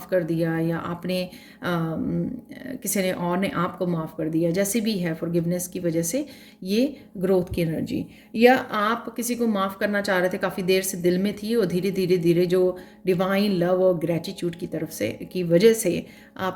कर दिया, या आपने किसी ने और ने आपको माफ़ कर दिया, जैसे भी है, फॉरगिवनेस की वजह से ये ग्रोथ की एनर्जी। या आप किसी को माफ़ करना चाह रहे थे, काफ़ी देर से दिल में थी, और धीरे धीरे धीरे जो डिवाइन लव और ग्रेटिट्यूड की तरफ से की वजह से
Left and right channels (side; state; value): both; identical; correlation 1.00